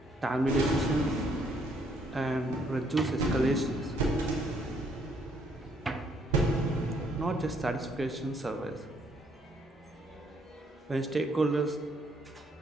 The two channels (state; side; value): normal; both; correlation 0.68